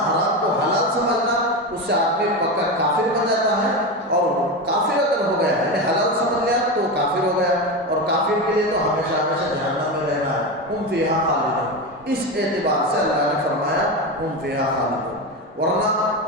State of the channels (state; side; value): normal; both; correlation 0.18